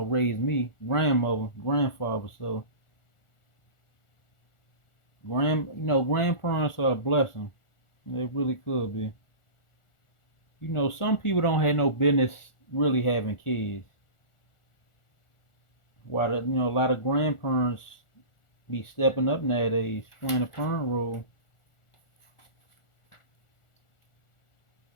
raised me, grandmother, grandfather. So, you know, grandparents are a blessing. They really could be. You know, some people don't have no business really having kids. While you know, a lot of grandparents be stepping up nowadays, playing a parent role.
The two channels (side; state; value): right; late; 1.4 ms